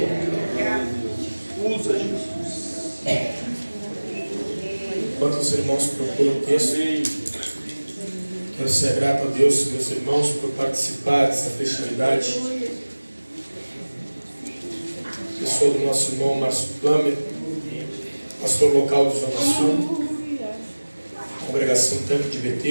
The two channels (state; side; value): inverted; both; correlation -1.00